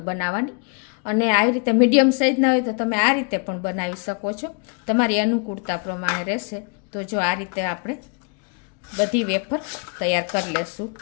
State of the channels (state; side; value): quieter; right; 35.5 dB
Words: બનાવવાની. અને આવી રીતે મીડિયમ સાઇઝના હોય તો તમે આ રીતે પણ બનાવી શકો છો. તમારી અનુકૂળતા પ્રમાણે રહેશે. તો જો આ રીતે આપણે બધી વેફર તૈયાર કરી લેશું.